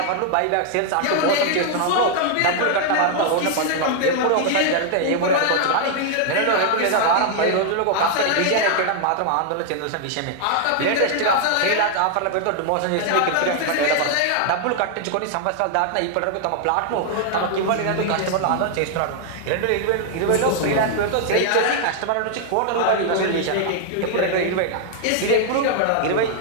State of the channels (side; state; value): both; different; correlation 0.00